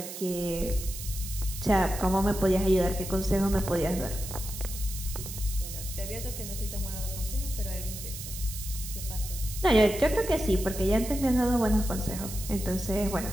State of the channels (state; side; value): noise; right; hiss, 9 dB below the sound